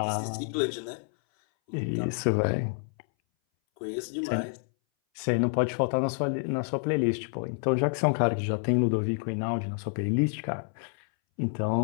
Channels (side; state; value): right; silent; 59 dB below the other